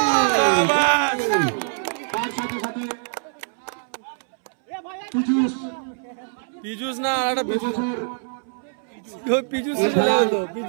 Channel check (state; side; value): silent; left; 63 dB below the other